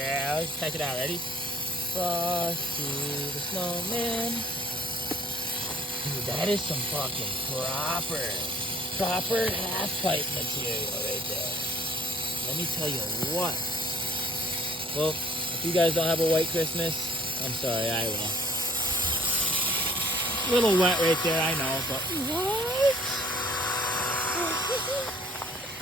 Check it out. Ready? Frosty the Snowman. Dude, that is some fucking proper half-pipe material right there. Let me tell you what. Well, if you guys don't have a white Christmas, I'm sorry, I will. A little wet right there, I know, but what?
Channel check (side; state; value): both; normal; correlation 0.54